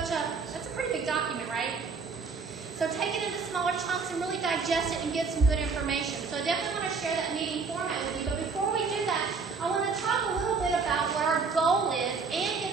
a, that's a pretty big document, right? So take it into smaller chunks and really digest it and get some good information. So I definitely want to share that meeting format with you, but before we do that, I want to talk a little bit about what our goal is and get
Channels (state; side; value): quieter; left; 4.8 dB